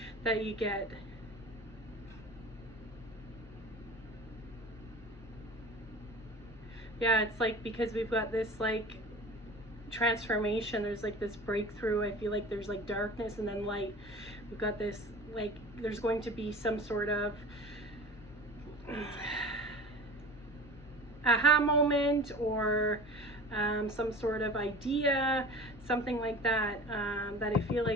that you get. Yeah, it's like because we've got this like transformation, there's like this breakthrough. I feel like there's like darkness and then light. We've got this like, there's going to be some sort of aha moment, or some sort of idea, something like that, that I feel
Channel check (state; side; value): normal; both; correlation 0.38